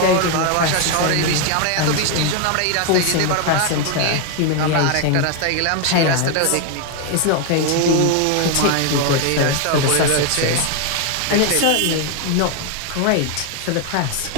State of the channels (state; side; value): different; both; correlation 0.01